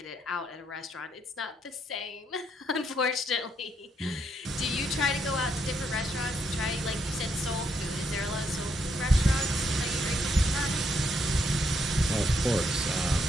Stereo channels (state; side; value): normal; both; correlation 0.76